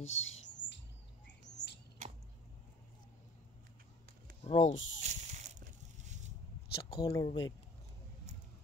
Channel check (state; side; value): normal; both; correlation 0.46